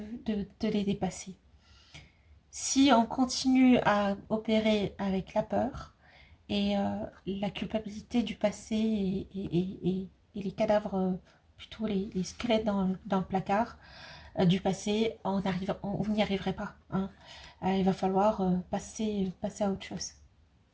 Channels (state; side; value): identical; both; correlation 1.00